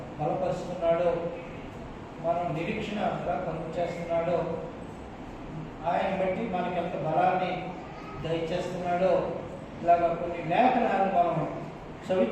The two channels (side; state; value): both; identical; correlation 1.00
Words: బలపరుస్తున్నాడో, మనం నిరీక్షణగా కలుగు చేస్తున్నాడో, ఆయన బట్టి మనకి ఎంత బలాన్ని దయచేస్తున్నాడో, ఇలాగ కొన్ని లేఖనాలు మనం